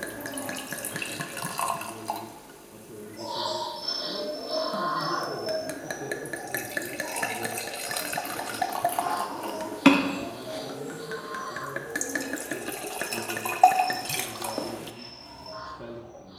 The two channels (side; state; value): both; identical; correlation 1.00